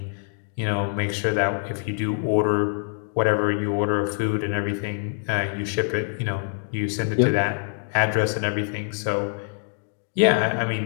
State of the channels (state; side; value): silent; right; digital silence